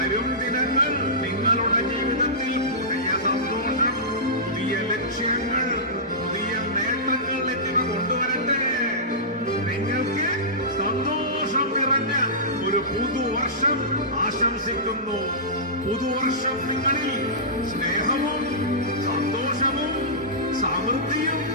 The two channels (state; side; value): normal; both; correlation -0.17